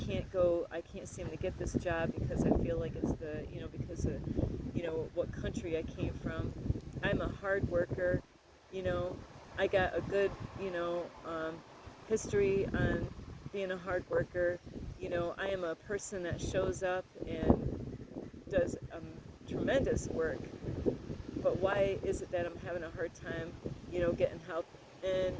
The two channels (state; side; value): identical; both; correlation 1.00